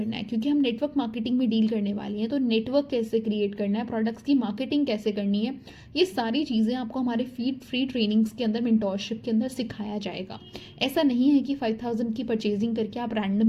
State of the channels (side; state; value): both; identical; correlation 1.00